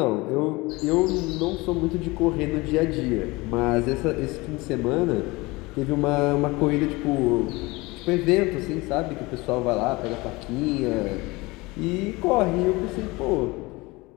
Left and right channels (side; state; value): right; quieter; 23.0 dB